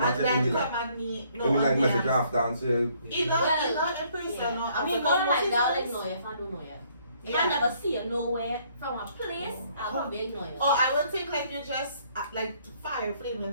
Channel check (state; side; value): inverted; both; correlation -0.65